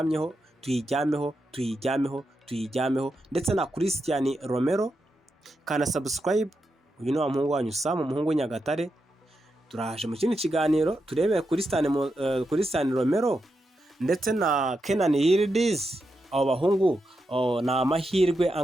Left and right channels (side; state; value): both; normal; correlation 0.86